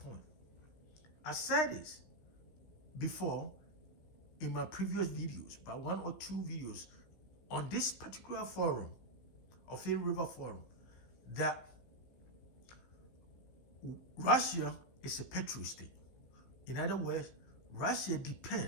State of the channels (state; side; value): late; right; 16 ms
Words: I said this before in my previous videos, by one or two videos on this particular forum, Ophir River Forum, that Russia is a petrol state. In other words, Russia